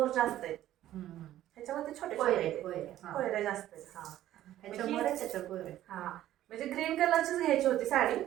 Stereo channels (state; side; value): quieter; left; 13.2 dB